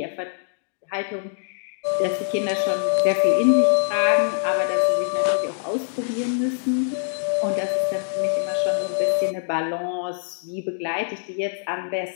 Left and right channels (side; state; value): right; silent; digital silence